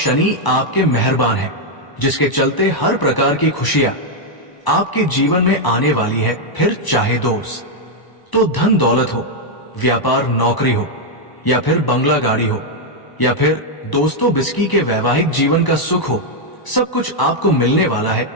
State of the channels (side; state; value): right; late; 1.0 ms